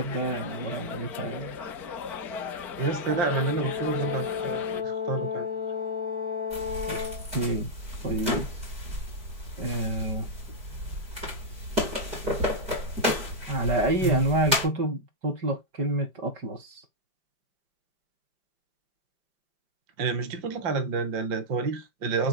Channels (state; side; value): late; left; 5.1 ms